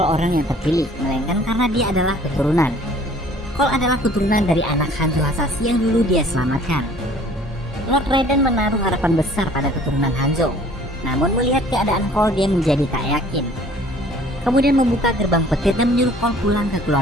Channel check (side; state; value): both; normal; correlation 0.53